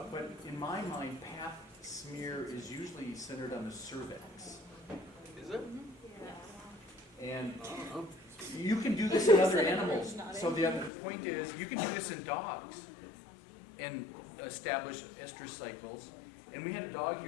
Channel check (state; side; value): drops out; right; at 10.9 s